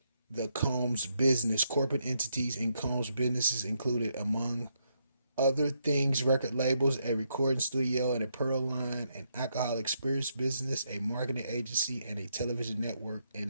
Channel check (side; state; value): both; inverted; correlation -0.77